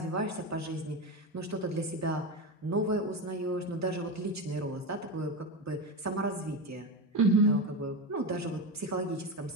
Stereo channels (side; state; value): both; normal; correlation 0.17